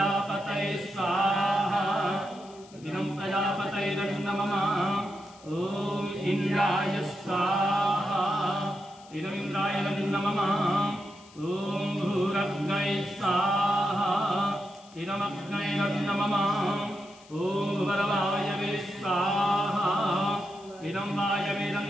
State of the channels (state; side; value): noise; left; hiss, 24 dB below the sound